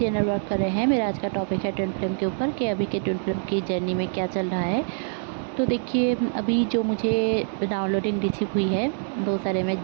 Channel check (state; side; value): silent; left; digital silence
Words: इनर वर्क कर रहे हैं। मेरा आज का टॉपिक है ट्विन फ्लेम के ऊपर कि अभी के ट्विन फ्लेम की जर्नी में क्या चल रहा है। तो देखिए, अभी जो मुझे डाउनलोडिंग रिसीव हुई है वो सारे मैं